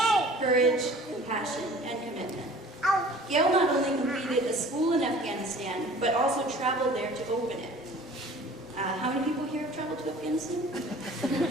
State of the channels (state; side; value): normal; both; correlation 0.47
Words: courage, compassion, and commitment. Gail not only completed a school in Afghanistan, but also traveled there to open it. How many people here have traveled to Afghanistan?